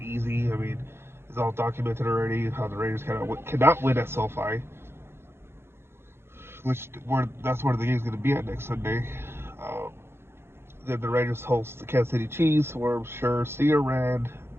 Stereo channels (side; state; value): left; late; 0.12 ms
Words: I mean, it's all documented already how the Raiders cannot win at SoFi, that's where the game's going to be at next Sunday. Um, then the Raiders host the Kansas City Chiefs, where I'm sure Cedar Rand,